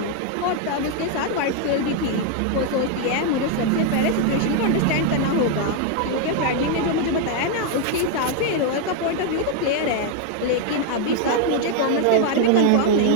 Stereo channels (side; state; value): both; different; correlation 0.00